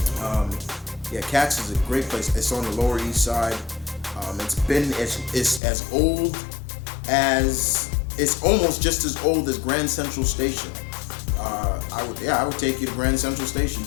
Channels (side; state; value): right; drops out; at 5.6 s